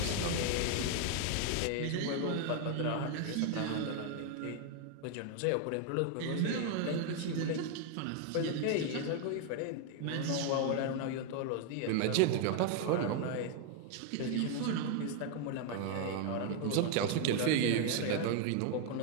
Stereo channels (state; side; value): different; both; correlation 0.00